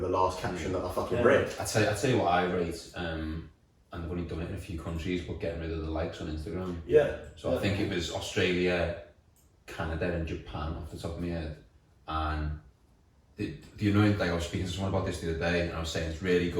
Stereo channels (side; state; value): both; identical; correlation 1.00